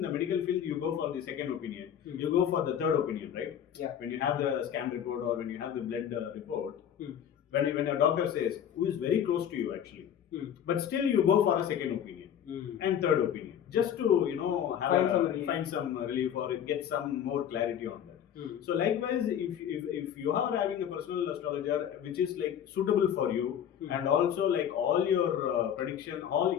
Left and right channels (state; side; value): quieter; right; 9.4 dB